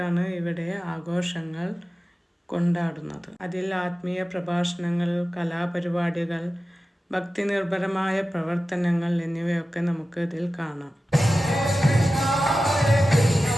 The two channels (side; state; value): both; normal; correlation 0.94